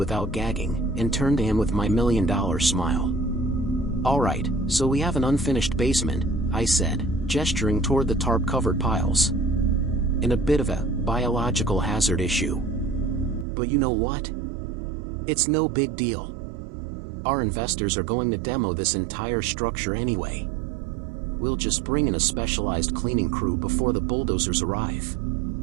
gagging, and turned to him with my $1,000,000 smile. "All right, so we have an unfinished basement," I said, gesturing toward the tarp-covered piles. "And a bit of a biological hazard issue. But you know what? It's no big deal. Our investors are going to demo this entire structure anyway. We'll just bring in a specialized cleaning crew before the bulldozers arrive.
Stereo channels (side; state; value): left; drops out; at 13.5 s